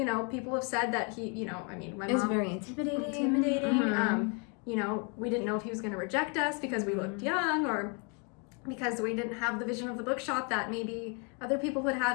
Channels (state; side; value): quieter; right; 35.9 dB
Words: people have said that he, my Is mom very intimidating. We didn't know if he was going to reject us because we looked young, or because we didn't have the vision of the bookshop that maybe other people would